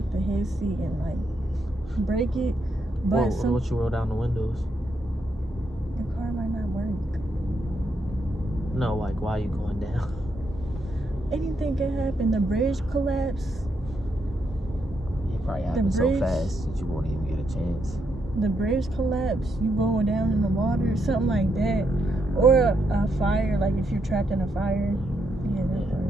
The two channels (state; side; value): normal; both; correlation 0.79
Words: the head seat and like break it. But what you roll down the windows? the car might not work. No, like why are you going down? Anything can happen. The bridge collapse. It probably happens so fast that you won't even get a chance. The bridge collapse. You going down in the water, something like that, or a fire. Like if you're trapped in a fire. Yeah, that part.